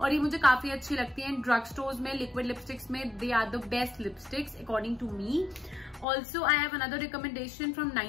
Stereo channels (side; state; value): right; drops out; at 6.1 s